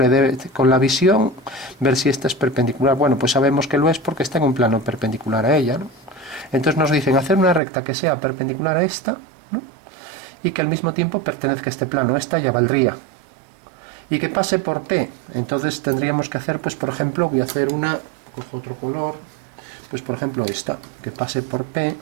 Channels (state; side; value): drops out; left; at 7.6 s